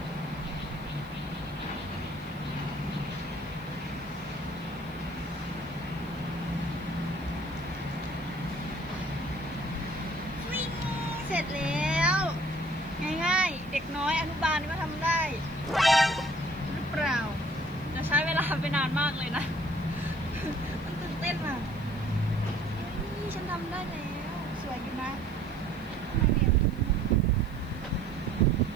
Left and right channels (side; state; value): left; noise; hiss, 26 dB below the sound